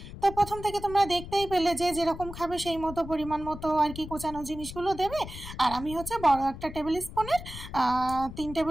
তো প্রথম থেকে তোমরা দেখতেই পেলে যে যেরকম খাবে সেই মতো পরিমাণ মতো আর কি কোচানো জিনিসগুলো দেবে। আর আমি হচ্ছে বড় একটা টেবিল স্পুনের 3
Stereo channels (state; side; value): noise; left; rumble, 12 dB below the sound